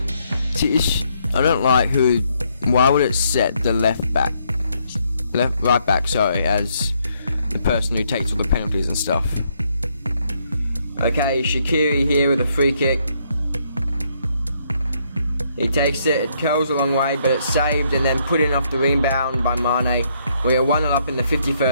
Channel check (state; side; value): inverted; both; correlation -0.72